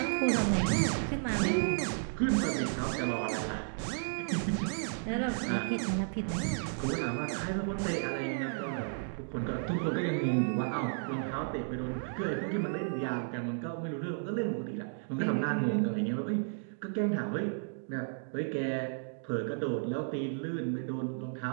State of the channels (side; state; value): left; silent; digital silence